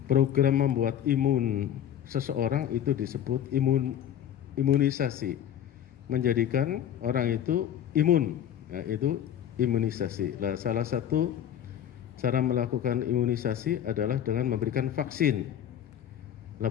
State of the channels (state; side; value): quieter; right; 10.0 dB